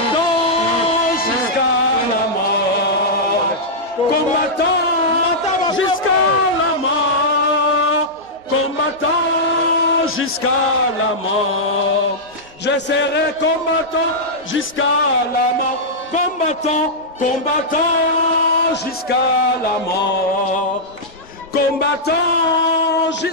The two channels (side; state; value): both; normal; correlation -0.10